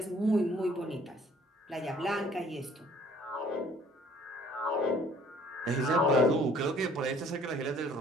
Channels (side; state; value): both; normal; correlation 0.56